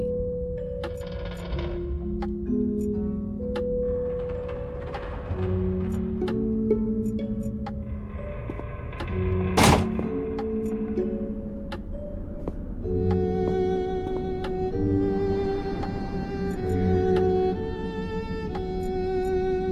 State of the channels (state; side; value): identical; both; correlation 1.00